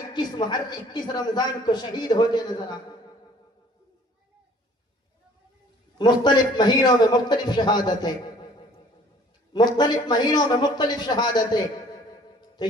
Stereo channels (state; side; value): normal; both; correlation 0.54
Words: 21 رمضان کو شہید ہوتے نظر آئے. مختلف مہینوں میں مختلف شہادتیں، مختلف مہینوں میں مختلف شہادتیں. تو